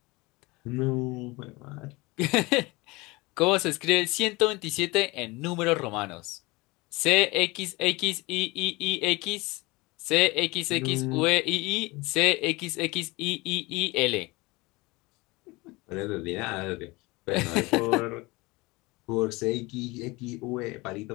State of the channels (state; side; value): quieter; right; 23.4 dB